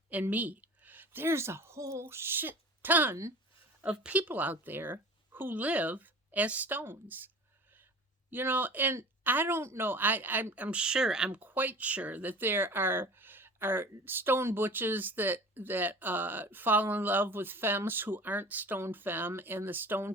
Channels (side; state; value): both; normal; correlation 0.41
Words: and me. There's a whole shit ton of people out there who live as stones. And I don't know, I'm quite sure that there are stone butches that fall in love with femmes who aren't stone femme, and the stone